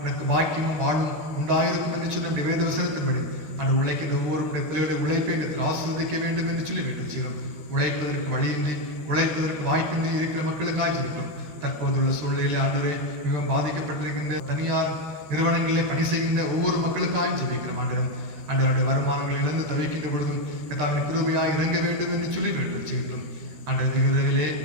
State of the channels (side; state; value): left; late; 13 ms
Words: பாக்கியமும் வாழும் உண்டாயிருக்கும் என்று சொன்ன வேத வசனத்தின்படி அந்த உழைக்கின்ற ஒவ்வொரு பிள்ளைகளுடைய உழைப்பை ஆசீர்வதிக்க வேண்டும் என்று சொல்லி வேண்டுதல் செய்கிறோம். உழைப்பதற்கு வழியின்றி உழைப்பதற்கு வாய்ப்பின்றி இருக்கிற மக்களுக்காக ஜெபிக்கிறோம். தற்போதுள்ள சூழ்நிலையிலே ஆண்டவரே மிகவும் பாதிக்கப்பட்டிருக்கின்ற தனியார் நிறுவனங்களிலே பணி செய்கின்ற ஒவ்வொரு மக்களுக்காக ஜெபிக்கிறோம். ஆண்டவருடைய வருமானங்கள் இழந்து தவிக்கின்ற பொழுதும் கர்த்தாவின் கிருபையாய் இறங்க வேண்டும் என்று சொல்லி வேண்டுதல் செய்கிறோம். ஆண்டவருடைய விரைவிலே